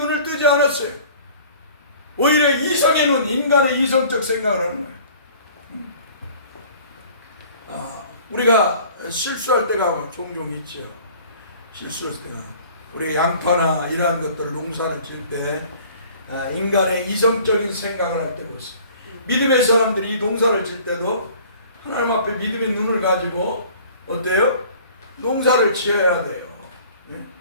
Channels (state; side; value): inverted; both; correlation -0.49